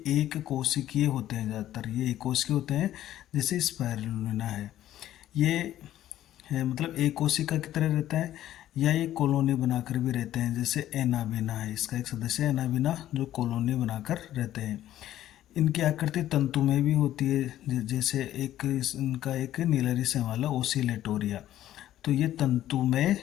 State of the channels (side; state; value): right; quieter; 12.9 dB